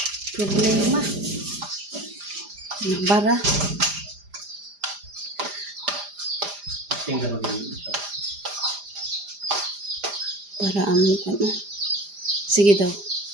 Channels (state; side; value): late; left; 5.0 ms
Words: Problema. Nagbara. Para among ano. Sige daw.